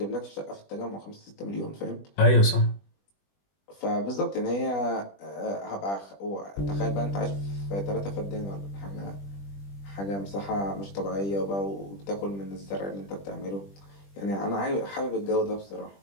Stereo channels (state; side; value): late; right; 20 ms